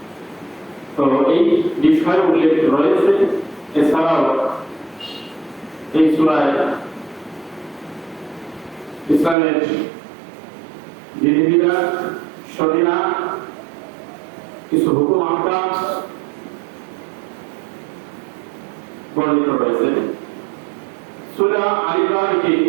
তো এই বিষয় উল্লেখ রয়েছে। এছাড়াও এই সূরায় ইসলামের বিধিবিধান, শরীয়ত, কিছু হুকুম আহকাম বর্ণিত রয়েছে। সূরা আল ইমরান কি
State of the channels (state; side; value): drops out; left; at 9.3 s